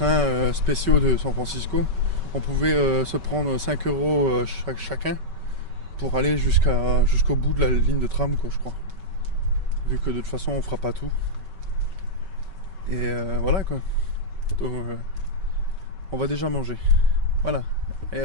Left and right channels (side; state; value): left; late; 5.2 ms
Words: spéciaux de San Francisco, on pouvait se prendre 5 € chacun pour aller jusqu'au bout de la ligne de tram, quoi, je crois. Vu que de toute façon on fera pas tout. Et voilà quoi. Donc, on va déjà manger. Voilà, et